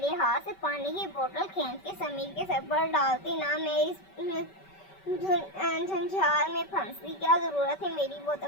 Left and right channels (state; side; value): late; right; 5.2 ms